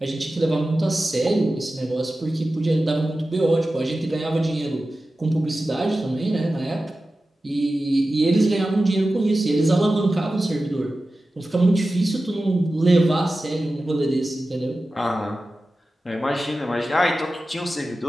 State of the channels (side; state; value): both; normal; correlation 0.94